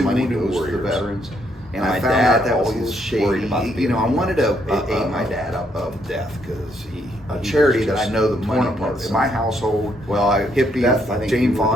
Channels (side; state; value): both; normal; correlation 0.73